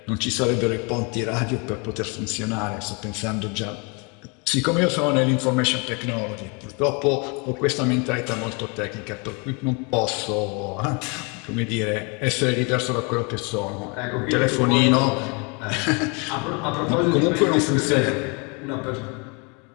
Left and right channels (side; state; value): right; quieter; 32.0 dB